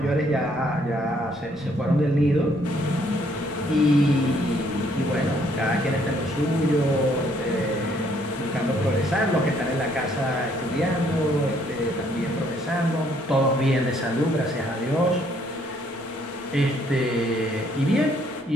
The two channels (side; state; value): both; normal; correlation 0.66